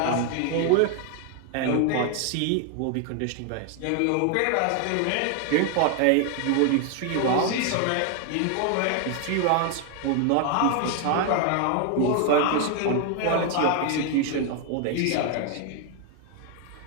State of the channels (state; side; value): different; both; correlation 0.01